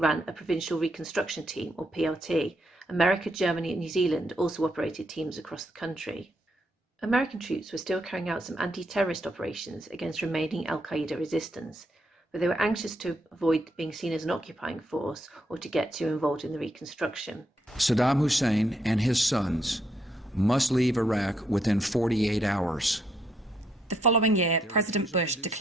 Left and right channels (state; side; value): normal; both; correlation 0.75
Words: a Provincial Reconstruction Team, or PRT. America, Germany and New Zealand also operated teams across the country. American troops were still carrying out some anti-terrorist operations against remaining Al-Qaeda resistance, but they were anxious to avoid being seen as an occupying force or to get too involved in the reconstruction. Saddam Hussein and his sons must leave Iraq within 48 hours. The following year, President Bush